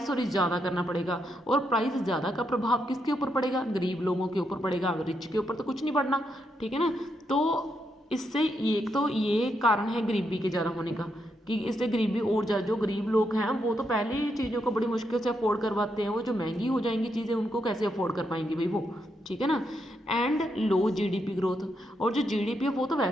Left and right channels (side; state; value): both; normal; correlation 0.80